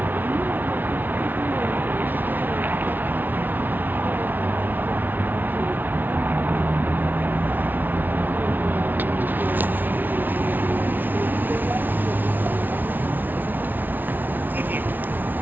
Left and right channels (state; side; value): late; left; 0.087 ms